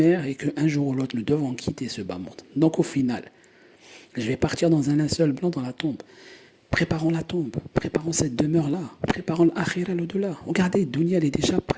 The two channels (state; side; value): identical; both; correlation 1.00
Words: et qu'un jour ou l'autre nous devons quitter ce bas monde. Donc au final, je vais partir dans un linceul blanc dans la tombe. Préparons la tombe, préparons cette demeure-là, préparons l'akhira, l'au-delà. Regardez, Dunya, elle est déjà